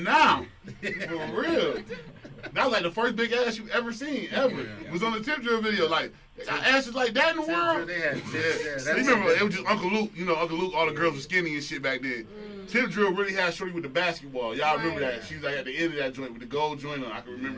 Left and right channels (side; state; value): both; identical; correlation 1.00